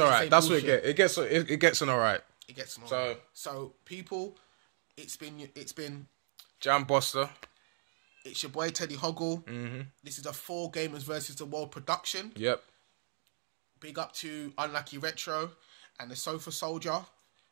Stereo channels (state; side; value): silent; left; digital silence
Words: That's what it gets. It gets an alright. It gets an alright. So people, it's been Jamboster. It's your boy TeddyHoggle. This is a 4 Gamers versus the World production. Yep. Big up to UnluckyRetro and the Sofa Soldier.